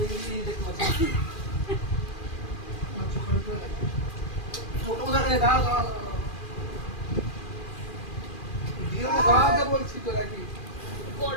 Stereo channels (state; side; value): late; right; 2.4 ms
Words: দেখতে পাচ্ছ ছোট দেখে দাও দাও দিয়ে দাঁড়াতে বলছি তো নাকি